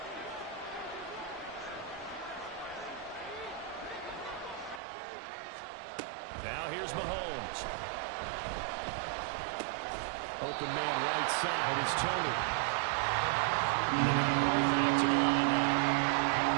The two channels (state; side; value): drops out; left; at 4.8 s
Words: Now here's Mahomes. Open man right side is Tony. Roll back to the line now.